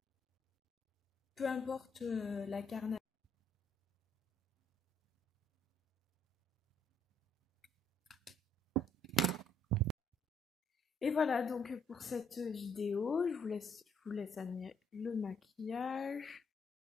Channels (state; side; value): normal; both; correlation 0.69